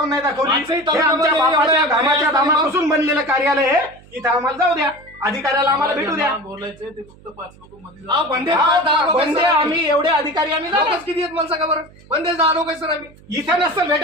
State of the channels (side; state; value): right; noise; hum, 25 dB below the sound